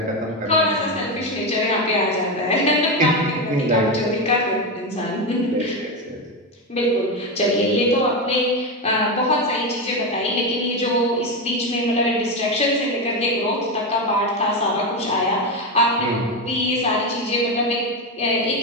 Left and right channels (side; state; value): both; normal; correlation 0.13